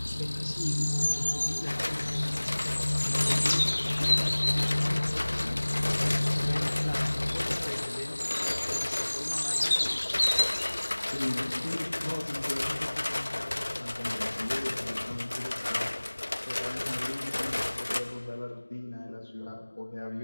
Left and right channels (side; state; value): both; inverted; correlation -1.00